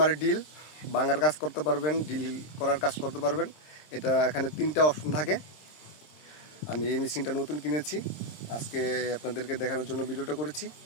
ডিল ভাঙার কাজ করতে পারবেন, ডিল করার কাজ করতে পারবেন। এটা এখানে 3টা অপশন থাকে। আমি এই মেশিনটা নতুন কিনেছি, আজকে আপনাদেরকে দেখানোর জন্য ভিডিওটা করেছি।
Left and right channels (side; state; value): right; late; 26 ms